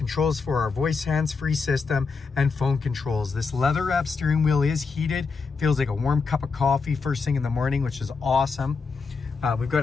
for our voice hands-free system, and phone controls. This leather wrap steering wheel is heated. Feels like a warm cup of coffee first thing in the morning, which is awesome. We've got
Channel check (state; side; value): quieter; right; 4.8 dB